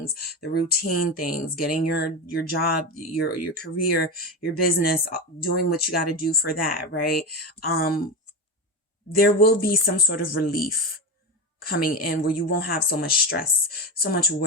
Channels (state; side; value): normal; both; correlation 0.20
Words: the routine things, getting your job, your career, your business, doing what you got to do for that. Right? There will be some sort of relief coming in where you won't have so much stress, so much